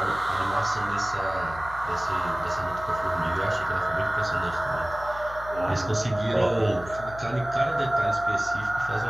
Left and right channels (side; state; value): left; noise; hum, 15 dB below the sound